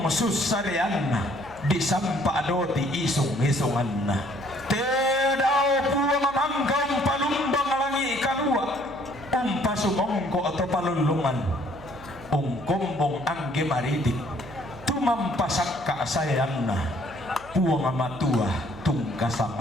susarean na di sampa adoti isung-isungan na pedao puang mangkang palung pasumongko atau palulungan ungkumbong angge maritik tumampasak kasayanna puang amatua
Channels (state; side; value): noise; right; hum, 21 dB below the sound